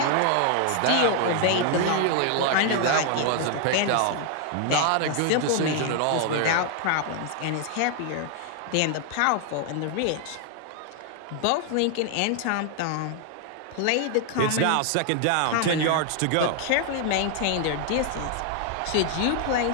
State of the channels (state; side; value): different; both; correlation 0.00